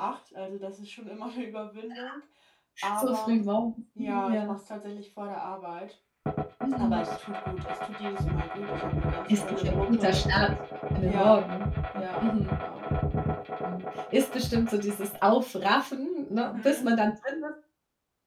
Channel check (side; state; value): both; identical; correlation 1.00